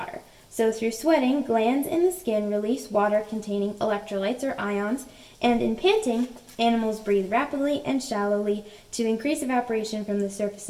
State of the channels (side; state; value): both; identical; correlation 1.00